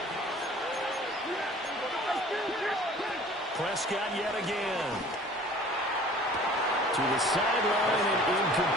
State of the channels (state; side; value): normal; both; correlation 0.48